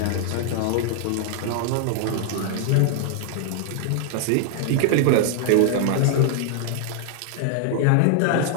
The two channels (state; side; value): different; both; correlation 0.00